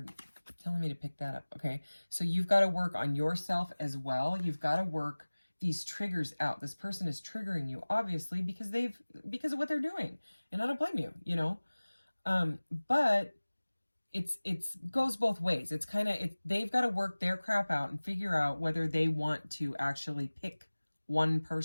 telling me to pick that up. Okay. So you've got to work on yourself as well. You've got to work these triggers out. This person is triggering you, obviously, because of what they're doing. And I don't blame you, you know? But it's goes both ways. It's kind of, they've got to work their crap out and figure out whether they want to actually pick one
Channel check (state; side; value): inverted; both; correlation -1.00